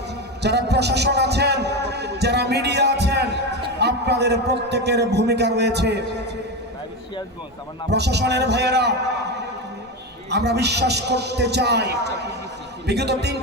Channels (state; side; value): normal; both; correlation 0.17